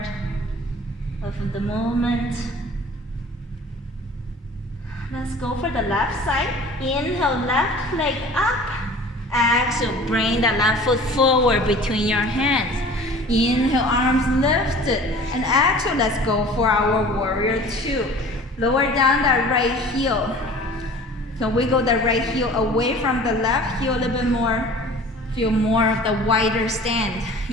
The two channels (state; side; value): normal; both; correlation 0.44